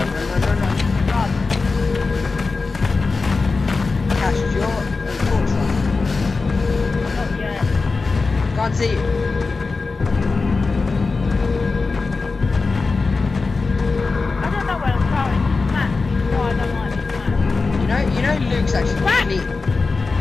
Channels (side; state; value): right; quieter; 4.1 dB